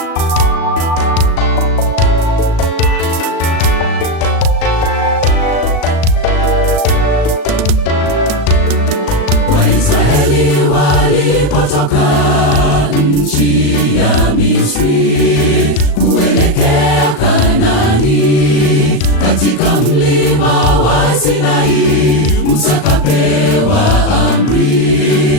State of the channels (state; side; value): late; right; 37 ms